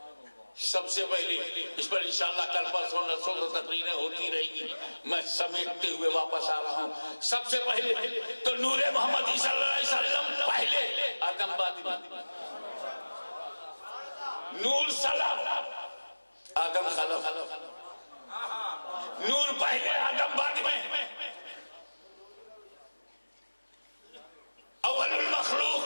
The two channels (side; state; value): both; inverted; correlation -1.00